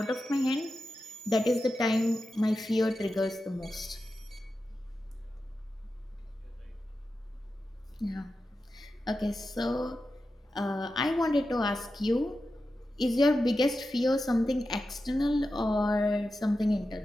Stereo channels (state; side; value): normal; both; correlation 0.91